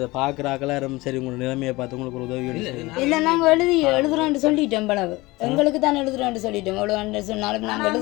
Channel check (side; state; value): right; quieter; 21.4 dB